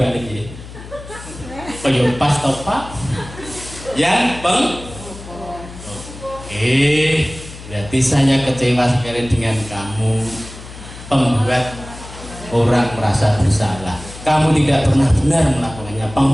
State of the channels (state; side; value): noise; left; hum, 15 dB below the sound